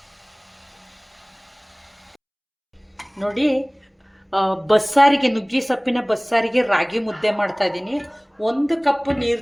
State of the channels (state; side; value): identical; both; correlation 1.00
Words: ನೋಡಿ, ಬಸ್ಸಾರಿಗೆ, ನುಗ್ಗಿ ಸೊಪ್ಪಿನ ಬಸ್ಸಾರಿಗೆ ರಾಗಿ ಮುದ್ದೆ ಮಾಡ್ತಾ ಇದ್ದೀನಿ. 1 ಕಪ್